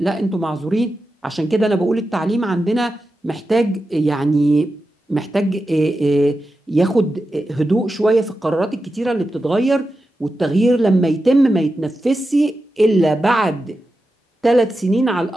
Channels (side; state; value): both; normal; correlation 0.91